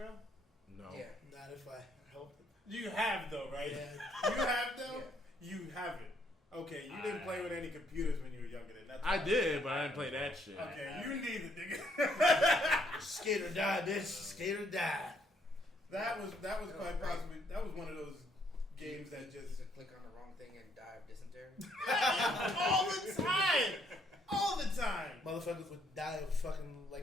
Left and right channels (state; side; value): normal; both; correlation 0.69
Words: No. Yeah. Not if I helped it. You have though, right? Yeah. You have though? Yeah. You haven't. Okay, you didn't play with any computers when you were younger then. That's I did, but I didn't play that shit. Okay, you neither, nigga. Skate or die, bitch. Skate or die. That was quite possibly one of those games that just click on the wrong thing and die of dysentery. all the time. All the time. Motherfuckers would die of fucking